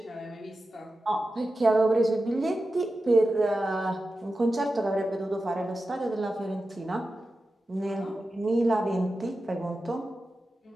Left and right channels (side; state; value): both; normal; correlation 0.93